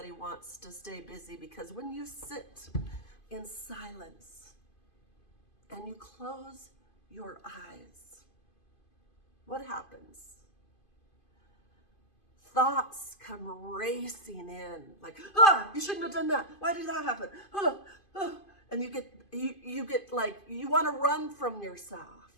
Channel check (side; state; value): right; late; 2.5 ms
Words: wants to stay busy, because when you sit in silence and you close your eyes, what happens? Thoughts come racing in, like, you shouldn't have done that. Why did that happen? And you get like, you want to run from yourself.